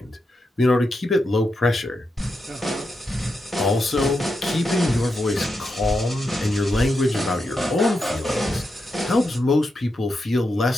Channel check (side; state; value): both; normal; correlation 0.86